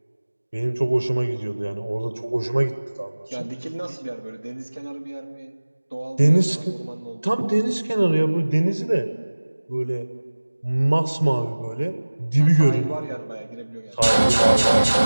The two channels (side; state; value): both; inverted; correlation -1.00